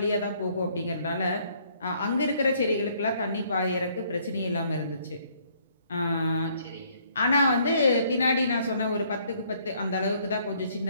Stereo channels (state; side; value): inverted; both; correlation -0.65